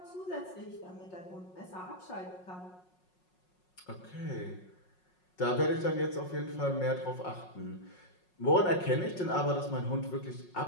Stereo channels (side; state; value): right; late; 5.5 ms